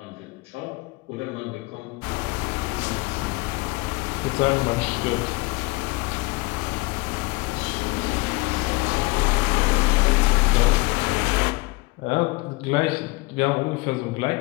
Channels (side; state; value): right; quieter; 23.9 dB